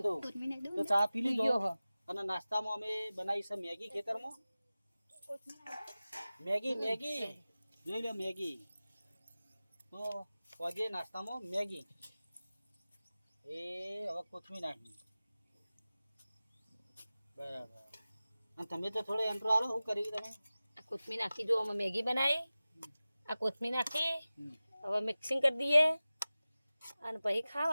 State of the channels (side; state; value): both; inverted; correlation -0.97